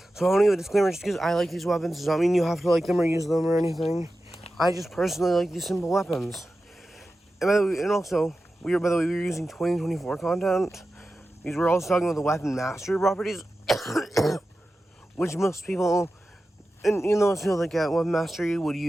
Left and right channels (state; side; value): normal; both; correlation 0.93